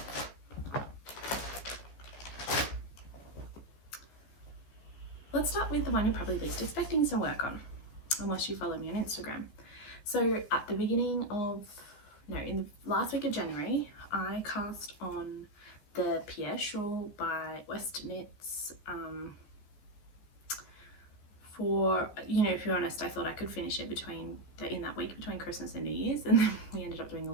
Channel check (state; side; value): late; right; 14 ms